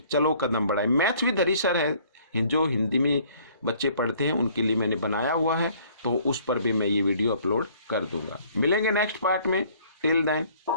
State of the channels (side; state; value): both; inverted; correlation -0.58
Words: चलो कदम बढ़ाए, मैथ्स विद हरी सर है, जो हिंदी में बच्चे पढ़ते हैं उनके लिए मैंने बनाया हुआ है, तो उस पर भी मैं ये वीडियो अपलोड कर दूंगा। मिलेंगे नेक्स्ट पार्ट में, टिल देन